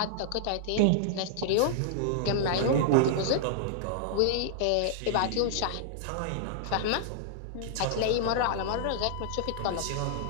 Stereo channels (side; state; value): both; different; correlation -0.01